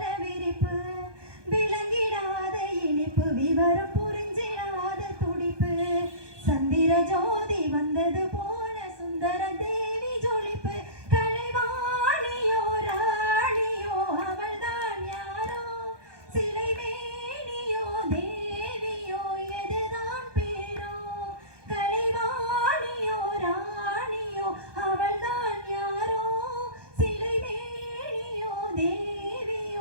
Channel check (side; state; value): left; late; 1.2 ms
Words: விரிப்பு விளங்கிடாத இனிப்பு விவரம் புரிஞ்சிடாத துடிப்பு சந்திர ஜோதி வந்தது போல சுந்தர தேவி ஜொலிப்பு கலைவாணியோ ராணியோ அவள்தான் யாரோ சிலை மேனியோ தேவியோ எதுதான் பேரோ கலைவாணியோ ராணியோ அவள்தான் யாரோ சிலை மேனியோ